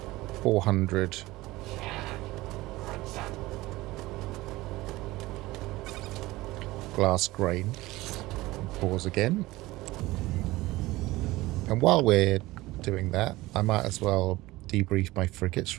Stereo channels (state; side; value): quieter; left; 19.0 dB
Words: 400 glass grain. Pause again. And while we're doing that, I might as well debrief my frigates